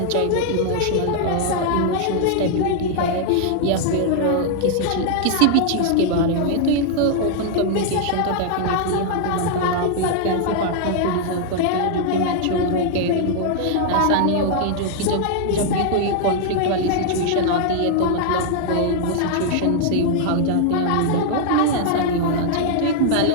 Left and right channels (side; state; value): both; different; correlation -0.01